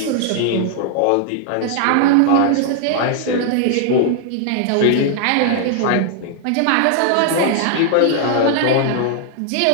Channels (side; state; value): both; different; correlation 0.00